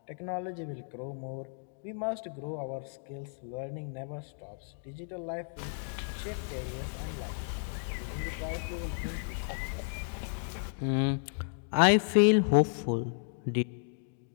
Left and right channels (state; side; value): silent; right; digital silence